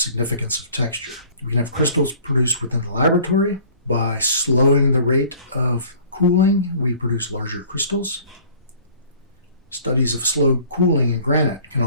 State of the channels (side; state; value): both; inverted; correlation -0.51